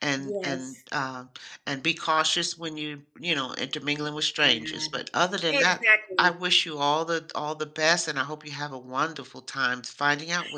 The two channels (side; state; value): both; identical; correlation 1.00